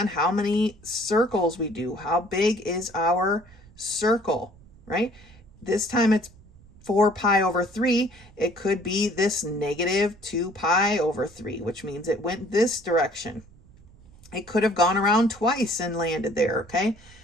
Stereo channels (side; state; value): right; noise; rumble, 24 dB below the sound